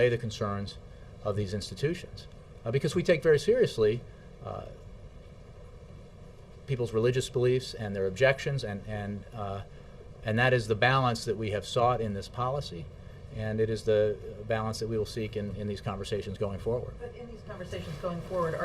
the concerns of these institutions. Because we take very seriously people's religious beliefs and their objections, and that is the balance that we have sought in this policy, and it is the balance that we will seek in these conversations going forward. But in these conversations going forward,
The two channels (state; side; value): identical; both; correlation 1.00